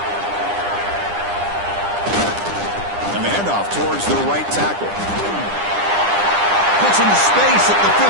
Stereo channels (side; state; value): left; late; 9.9 ms